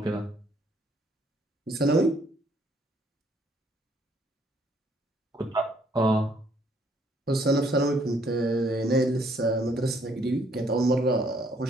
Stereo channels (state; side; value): normal; both; correlation 0.66